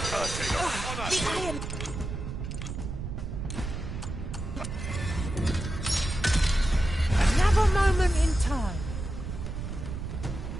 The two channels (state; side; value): noise; right; rumble, 6 dB below the sound